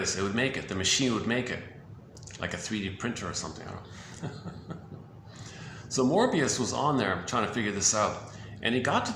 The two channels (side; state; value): both; identical; correlation 1.00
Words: It would make it. The machine would make it. Like a 3D printer or something. I don't know. So Morbius was on there trying to figure this out. And he got to